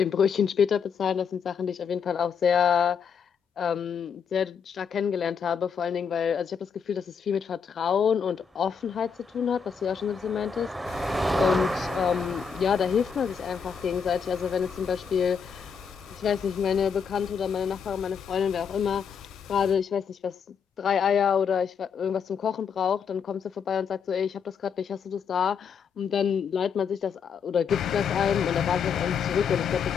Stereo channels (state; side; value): quieter; right; 6.7 dB